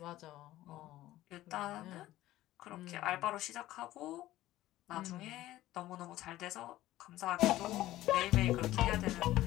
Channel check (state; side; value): quieter; right; 15.4 dB